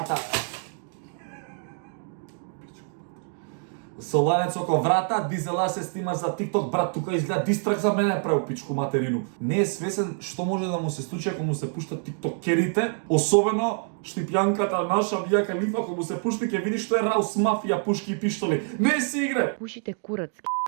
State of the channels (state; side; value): silent; left; 56 dB below the other